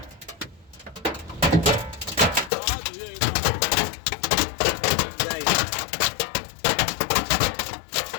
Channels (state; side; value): drops out; right; at 2.5 s